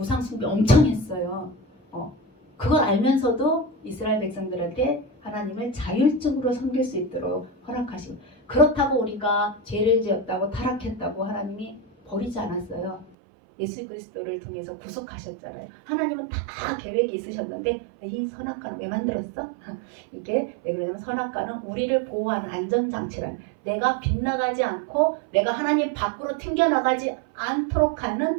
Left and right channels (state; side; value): drops out; left; at 13.2 s